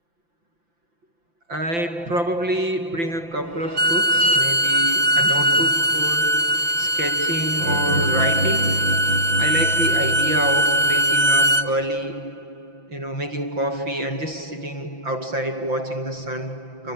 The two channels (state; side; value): late; left; 5.9 ms